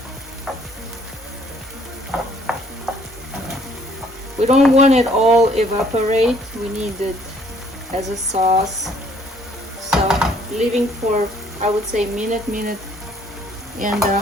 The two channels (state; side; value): normal; both; correlation 0.61